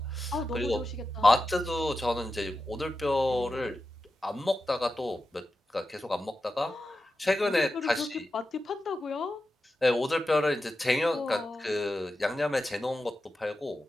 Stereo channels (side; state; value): both; normal; correlation 0.91